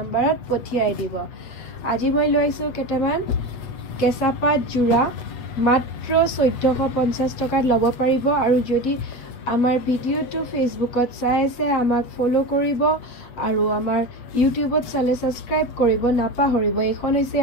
পঠিয়াই দিব। আজি মই লৈ আহিছো কেটামান কেঁচা পাট যোৰা মাত্ৰ 1450 টকাত ল'ব পাৰিব। আৰু যদি আমাৰ ভিডিঅ'টো ফেচবুকত চাই আছে আমাক ফলো কৰিব আৰু আমাৰ ইউটিউবত চালে সাবস্ক্ৰাইব কৰিব নাপাহৰিব। এইখন হৈছে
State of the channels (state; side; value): late; right; 7.9 ms